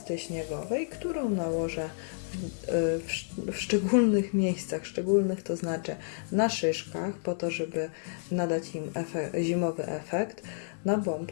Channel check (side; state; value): right; silent; digital silence